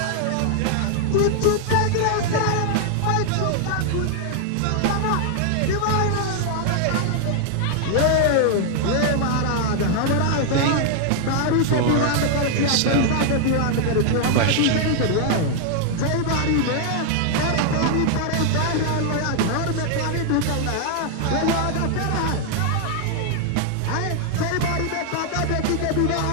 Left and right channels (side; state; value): both; different; correlation 0.00